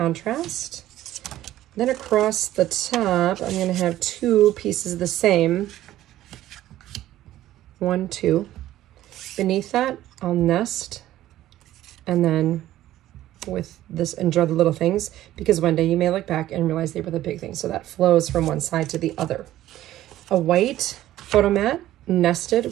Then across the top, I'm going to have 2 pieces of the same. 1, 2. Beneath that, I'll nest. And then with this, enjoy the little things, because one day you may look back and realize they were the big things. So that flows from one side to the other. A white photo mat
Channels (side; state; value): left; quieter; 14.0 dB